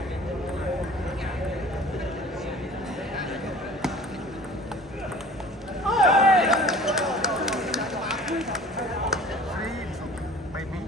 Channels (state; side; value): normal; both; correlation 0.46